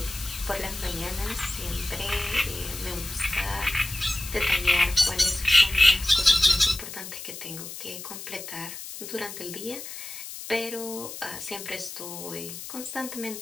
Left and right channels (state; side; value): noise; left; hiss, 10 dB below the sound